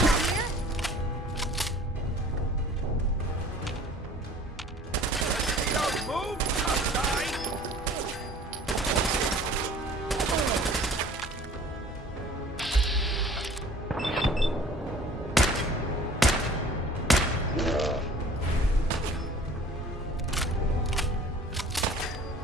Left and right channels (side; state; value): both; normal; correlation 0.48